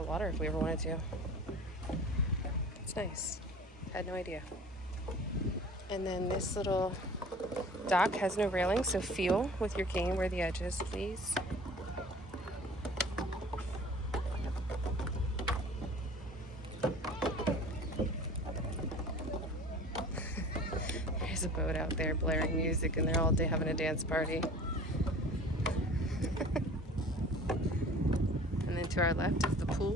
water if we ever wanted to. It's nice. Had no idea. And then this little dock has no railing, so feel with your cane where the edge is, please. There's a boat out there blaring music and they're all day having a dance party. And then to our left is the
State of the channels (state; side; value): normal; both; correlation 0.44